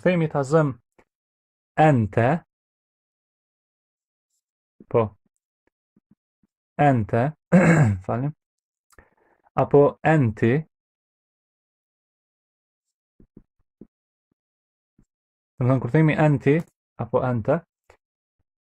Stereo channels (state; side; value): identical; both; correlation 1.00